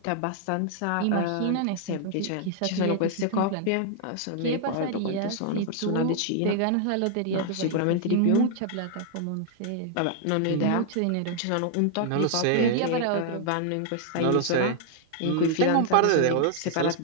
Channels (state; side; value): different; both; correlation 0.00